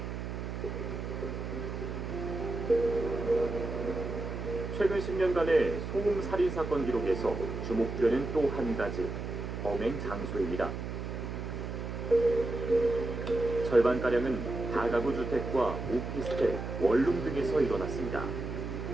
최근 10년간의 소음 살인 사건 기록에서 주목되는 또 한 가지 범행 장소입니다. 절반가량은 다가구 주택과 오피스텔, 원룸 등에서 일어났습니다.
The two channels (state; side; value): noise; right; hum, 5 dB below the sound